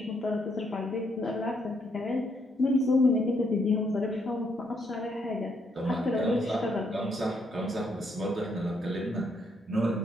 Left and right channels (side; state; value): both; normal; correlation 0.74